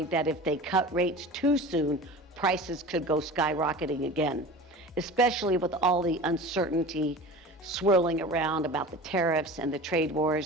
that if they cut rates too soon, prices could go skyrocketing again, especially with all the uncertainty swirling around about the tariffs and the trade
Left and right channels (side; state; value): both; normal; correlation 0.36